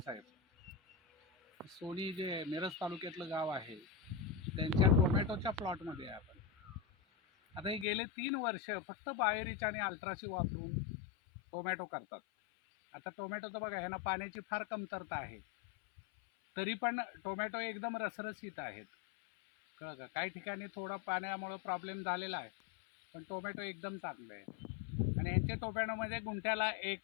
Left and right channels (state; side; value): drops out; right; at 7.9 s